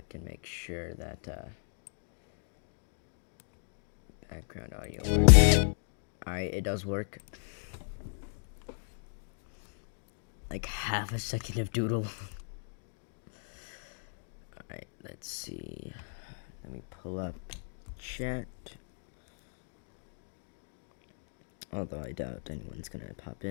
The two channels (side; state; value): right; silent; digital silence